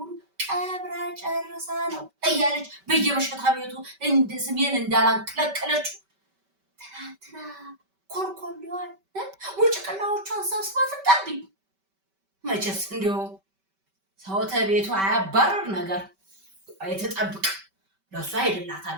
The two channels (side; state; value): left; late; 5.2 ms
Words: ቀብራ ጨርሳ ነው እያለች በየመሸታ ቤቱ እንደ ስሜን እንዳላንቀለቀለችው ትናንትና ኮልኮሌዋን ውጭቅላዎቿን ሰብስባ ትጣብኝ። መቼስ እንዲሁ ሰው ተቤቱ አያባረር ነገር አይተጠብቅ ለእሷ